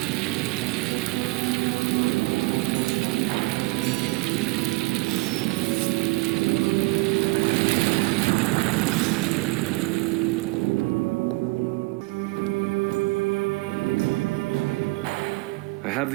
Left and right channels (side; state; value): left; quieter; 24.7 dB